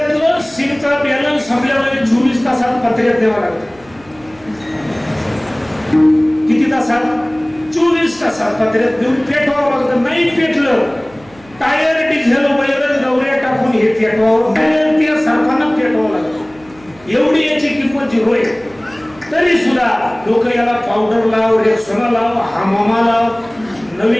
सिमचा बॅलन्स संपल्यावर 24 तासात पत्र्यात द्यावा लागतं. किती तासात? 24 तासात पत्र्यात देऊन पेटवावं लागतं. नाही पेटलं टायर डिझेल वगैरे गवऱ्या टाकून हे पेटवावं, त्या सरकारला पेटवावं लागतं. एवढी याची किंमत 0 आहे. तरी सुद्धा लोक याला पावडर लाव, रेक्सोना लाव, हमामा लाव,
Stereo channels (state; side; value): noise; right; hum, 26 dB below the sound